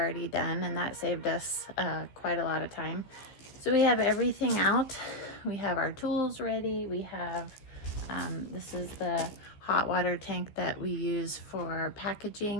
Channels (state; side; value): late; right; 15 ms